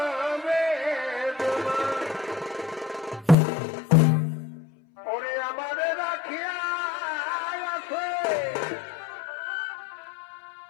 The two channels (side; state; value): right; drops out; at 3.4 s